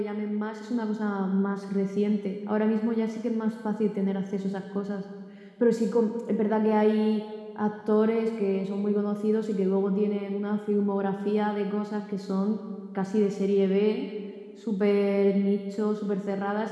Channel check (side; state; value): both; identical; correlation 1.00